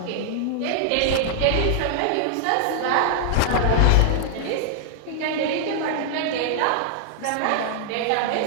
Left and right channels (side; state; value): both; different; correlation 0.00